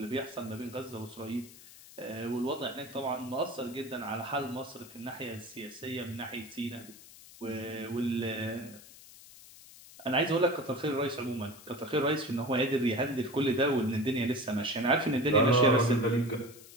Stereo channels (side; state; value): left; noise; hiss, 19 dB below the sound